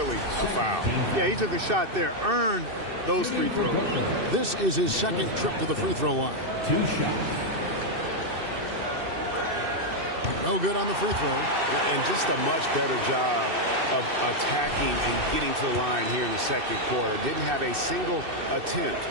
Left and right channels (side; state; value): left; late; 2.6 ms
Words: a foul. Yeah, he took a shot there, earned those free throws. This is his second trip to the free throw line. 2 shots. No good on the free throw. And just a much better job of attacking and getting to the line here in the second quarter. Didn't have a single attempt